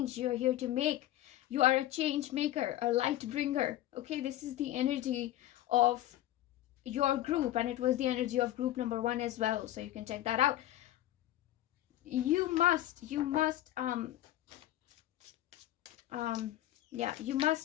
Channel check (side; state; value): right; quieter; 14.2 dB